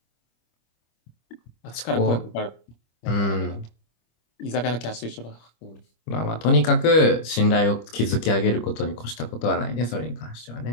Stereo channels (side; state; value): right; late; 25 ms